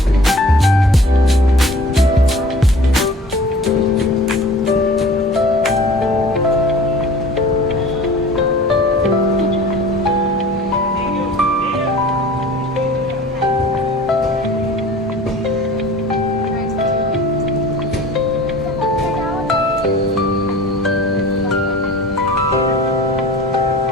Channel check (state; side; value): normal; both; correlation 0.44